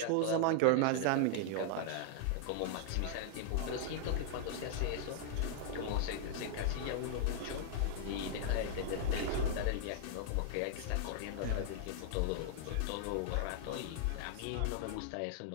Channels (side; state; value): both; different; correlation -0.01